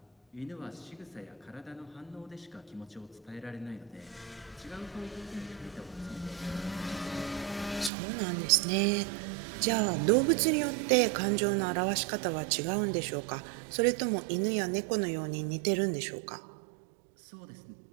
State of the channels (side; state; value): left; drops out; at 7.9 s